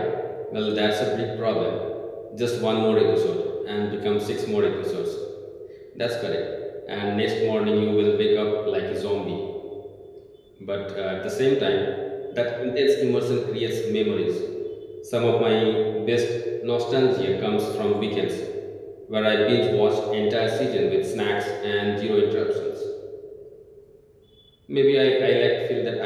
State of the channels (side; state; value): both; identical; correlation 1.00